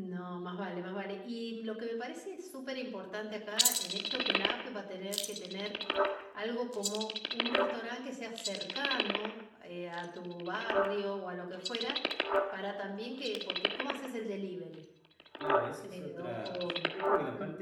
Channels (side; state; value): both; identical; correlation 1.00